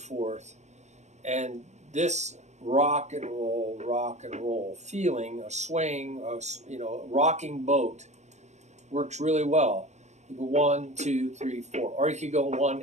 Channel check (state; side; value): late; left; 0.33 ms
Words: And this rock and roll feeling, a swaying, rocking boat works really well. You go 1, 2, 3, 4. Or you could go